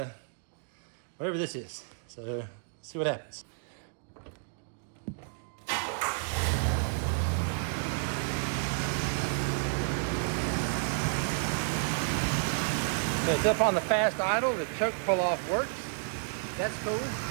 whatever this is. So let's see what happens. So it's up on the fast idle. The choke pull off works. That's cool.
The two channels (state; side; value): silent; left; digital silence